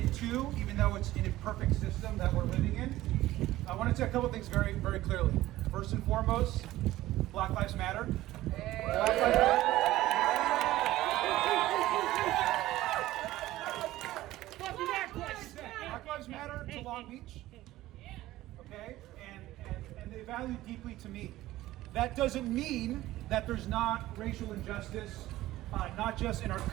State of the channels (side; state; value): left; quieter; 16.0 dB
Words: too, even though it's an imperfect system that we're living in. I want to say a couple things very, very clearly. First and foremost, Black Lives Matter. Black Lives Matter. Black Lives Matter to Long Beach. Okay, and they value deeply to me. That doesn't mean that there's not racial injustice, not just in our